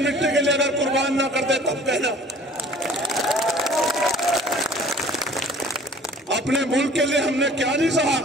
के लिए अगर कुर्बान ना करते तब कहना। अपने मुल्क के लिए हमने क्या नहीं सहा।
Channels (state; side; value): normal; both; correlation 0.50